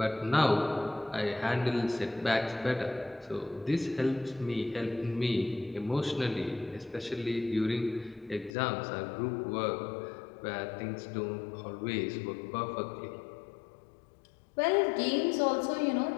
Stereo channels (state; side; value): drops out; right; at 8.5 s